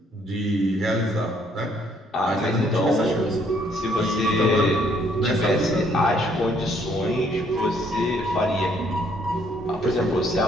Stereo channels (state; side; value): normal; both; correlation 0.66